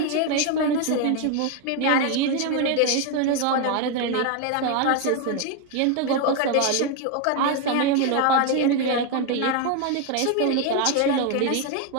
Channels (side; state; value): both; different; correlation 0.01